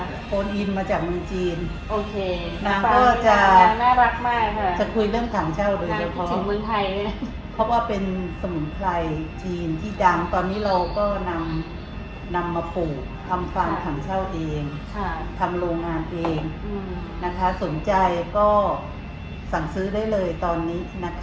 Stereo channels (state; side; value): identical; both; correlation 1.00